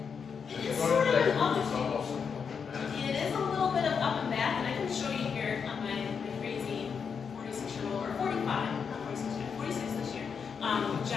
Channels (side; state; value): right; quieter; 6.3 dB